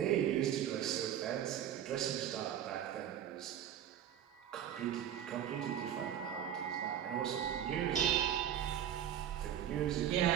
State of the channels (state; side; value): quieter; left; 10.2 dB